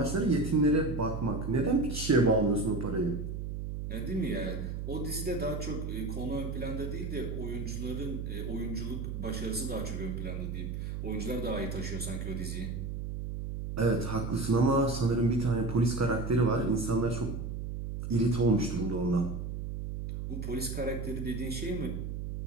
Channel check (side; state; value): right; noise; hum, 5 dB below the sound